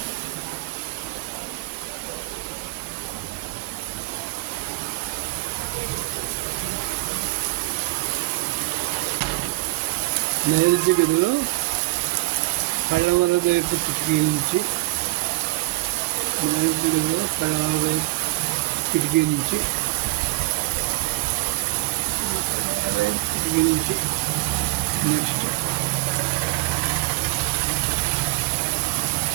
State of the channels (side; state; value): left; quieter; 21.8 dB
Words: నైరుతి గదిలో పడమర వైపు కిటికీ నుంచి. నైరుతి గదిలో పడమర వైపు కిటికీ నుంచి. నెక్స్ట్